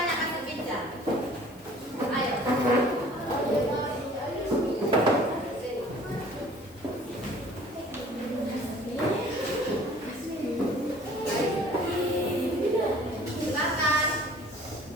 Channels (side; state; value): left; noise; hiss, 25 dB below the sound